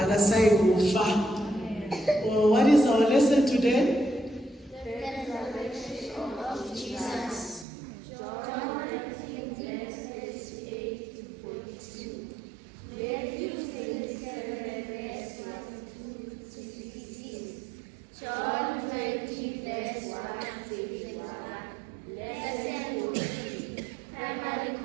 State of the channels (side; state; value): left; drops out; at 7.7 s